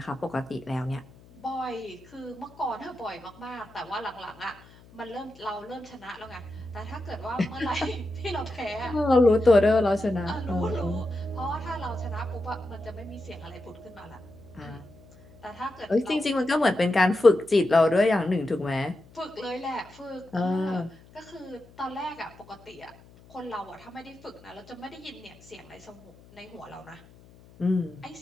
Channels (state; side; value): noise; left; hum, 24 dB below the sound